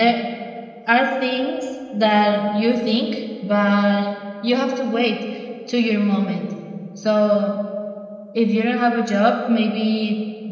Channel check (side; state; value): both; identical; correlation 1.00